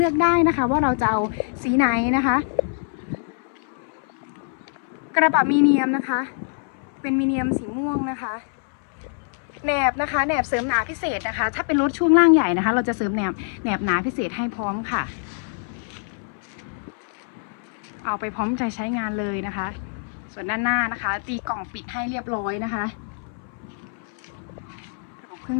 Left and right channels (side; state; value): right; silent; 62 dB below the other